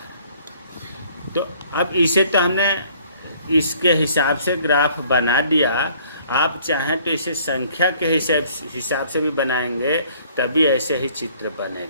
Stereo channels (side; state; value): both; inverted; correlation -0.58